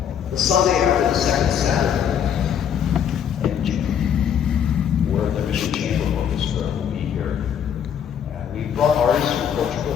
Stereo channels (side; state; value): right; quieter; 8.6 dB